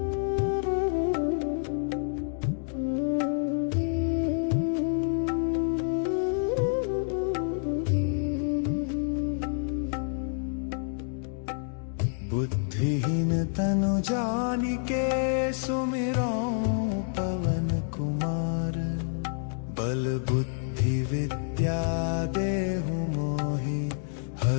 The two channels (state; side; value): silent; right; digital silence